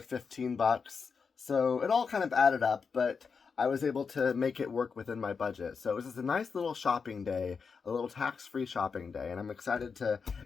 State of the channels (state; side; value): quieter; right; 5.5 dB